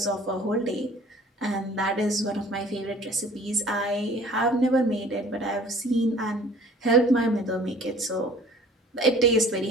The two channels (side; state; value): both; normal; correlation 0.50